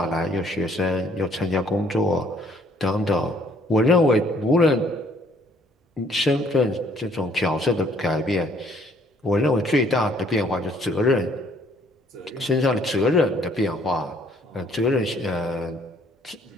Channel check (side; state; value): both; normal; correlation 0.63